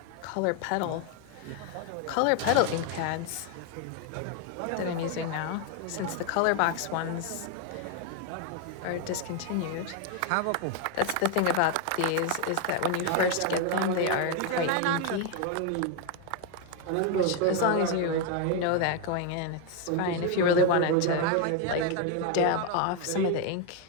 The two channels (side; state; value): both; different; correlation 0.01